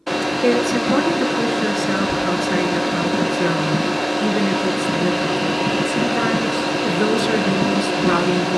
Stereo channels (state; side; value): identical; both; correlation 1.00